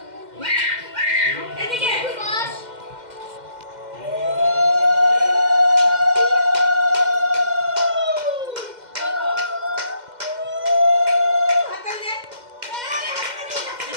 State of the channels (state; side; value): late; left; 2.1 ms